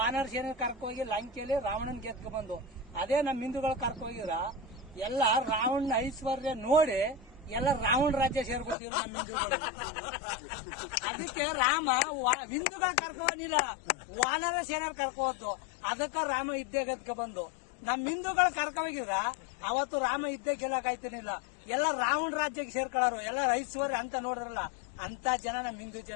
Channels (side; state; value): right; drops out; at 8.8 s